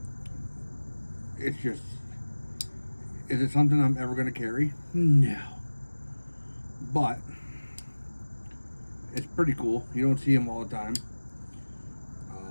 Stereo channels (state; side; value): inverted; both; correlation -1.00